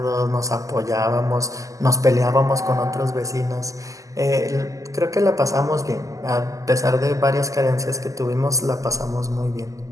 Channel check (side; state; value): left; late; 0.16 ms